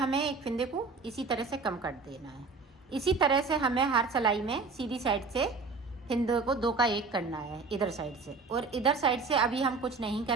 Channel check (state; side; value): quieter; left; 4.4 dB